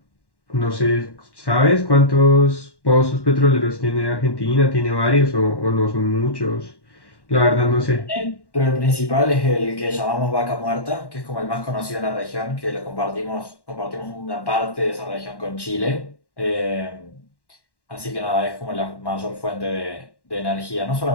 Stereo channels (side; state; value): right; late; 1.1 ms